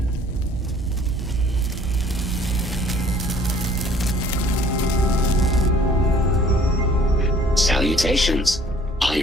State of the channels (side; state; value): both; normal; correlation 0.55